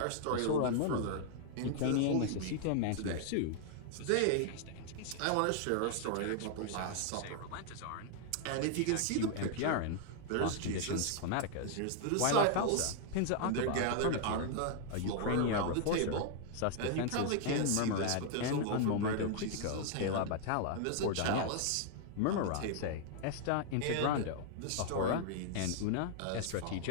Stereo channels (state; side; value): different; both; correlation 0.00